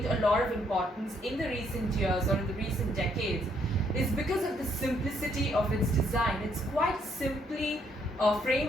a lot of importance in the recent years or in the recent decades is because of the simplicity of its design. It's quite simply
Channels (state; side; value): normal; both; correlation 0.70